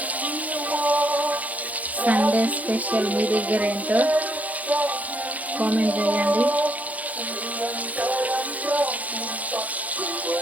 సండే స్పెషల్ మీ దగ్గర ఏంటో కామెంట్ చేయండి.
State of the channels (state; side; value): late; left; 0.074 ms